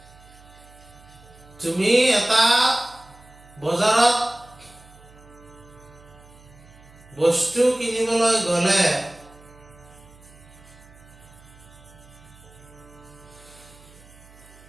তুমি এটা বজাৰত বস্তু কিনিবলৈ গ'লে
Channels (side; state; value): right; noise; hum, 24 dB below the sound